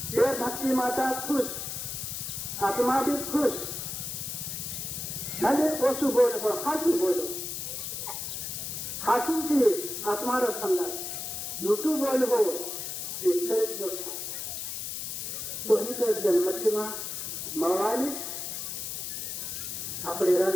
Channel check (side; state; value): left; noise; hiss, 5 dB below the sound